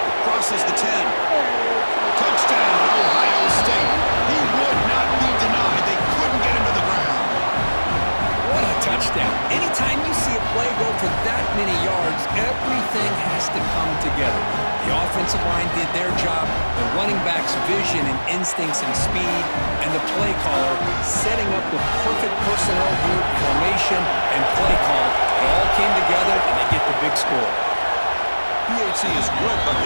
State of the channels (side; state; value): both; inverted; correlation -1.00